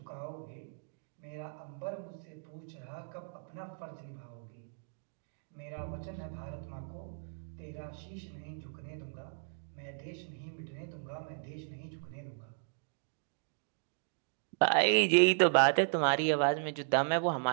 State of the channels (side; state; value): left; silent; digital silence